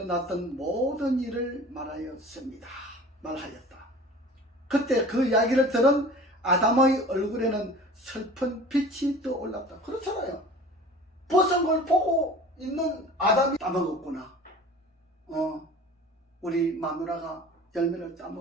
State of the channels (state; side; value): normal; both; correlation 0.42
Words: 모든 일을 말하였다. 그때 그 이야기를 들은 아담의 얼굴에는 슬픈 빛이 떠올랐다. 그렇잖아요. 벗은 걸 보고 있는 아담이 따먹었구나. 우리 마누라가 열매를